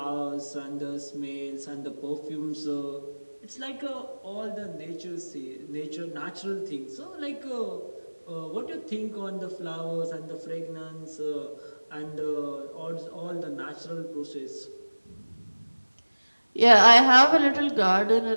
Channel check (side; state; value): both; inverted; correlation -1.00